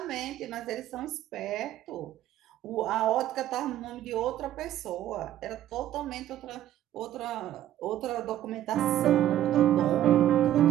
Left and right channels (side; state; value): left; quieter; 12.5 dB